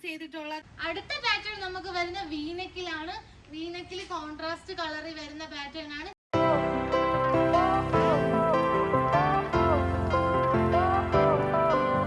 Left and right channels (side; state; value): both; identical; correlation 1.00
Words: ചെയ്തിട്ടുള്ളത്. അടുത്ത പാറ്റേൺ നമുക്ക് വരുന്ന വീനെക്കിലാണ്. വീനെക്കിൽ കോൺട്രാസ്റ്റ് കളറിൽ വരുന്ന പാറ്റേൺ ആണ്.